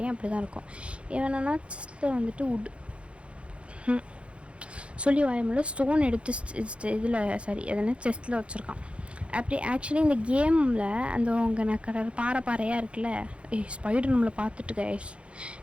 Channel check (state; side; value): late; left; 0.060 ms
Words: அப்படி தான் இருக்கும். ஏன்னா செஸ்ட்டில் வந்துட்டு சொல்லி வாயமுள்ள ஸ்டோன் எடுத்து இதில் எதனா செஸ்ட்டில் வச்சுருக்கான். அப்படி ஆக்சுவலி இந்த கேமில் அந்த உங்கள் பாறையாக இருக்குல்ல, ஸ்பைடர் நம்மளை பார்த்துட்டு கைஸ்,